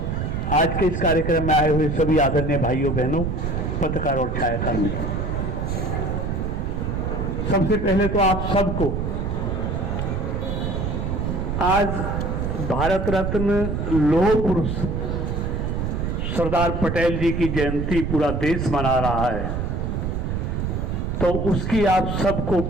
आज के इस कार्यक्रम में आए हुए सभी आदरणीय भाइयों बहनों, पत्रकार और छायाकर्मी, सबसे पहले तो आप सबको आज भारत रत्न लौह पुरुष सरदार पटेल जी की जयंती पूरा देश मना रहा है, तो उसकी आप सबको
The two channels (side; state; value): right; noise; rumble, 1 dB below the sound